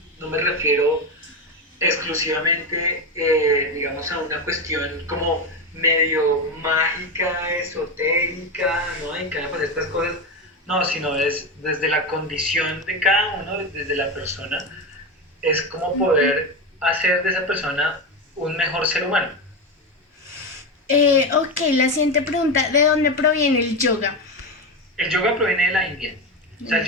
me refiero exclusivamente, digamos, a una cuestión como medio mágica, esotérica, ¿no? Y que van a pasar estas cosas. No, sino es desde la condición de cada uno, desde la persona, es como poder hacer de esa persona un mejor ser humano. Ok, la siguiente pregunta, ¿de dónde proviene el yoga? El yoga proviene de la India. O sea, el Mm.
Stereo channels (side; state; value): both; normal; correlation 0.15